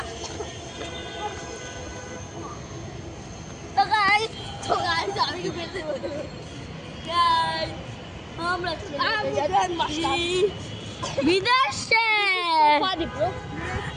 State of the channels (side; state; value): both; identical; correlation 1.00